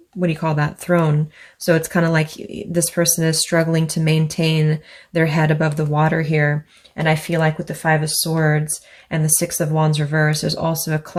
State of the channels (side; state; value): both; identical; correlation 1.00